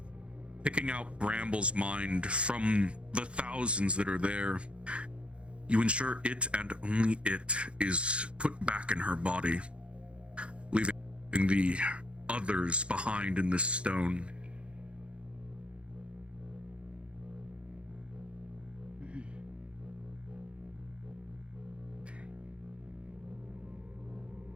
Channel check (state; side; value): late; left; 0.059 ms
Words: picking out Bramble's mind from the thousands that are there, you ensure it and only it is put back in her body, leaving the others behind in this stone.